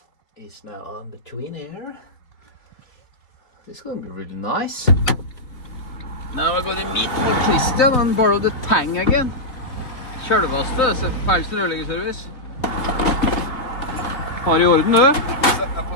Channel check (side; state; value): right; late; 3.4 ms